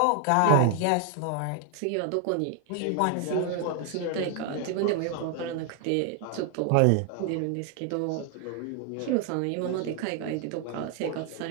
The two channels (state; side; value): different; both; correlation 0.00